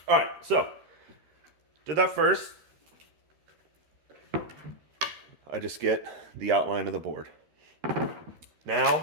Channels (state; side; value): late; left; 13 ms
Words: right, so did that first. I just get the outline of the board.